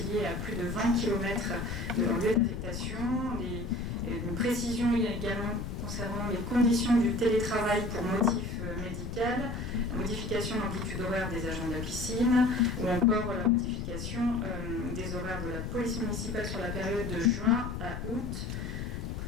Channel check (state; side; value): noise; left; rumble, 6 dB below the sound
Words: à plus de 20 km de leur lieu d'affectation, une précision également concernant les conditions du télétravail pour motif médical, la modification d'amplitude horaire des agents de la piscine, ou encore la modification des horaires de la police municipale sur la période de juin à août, pour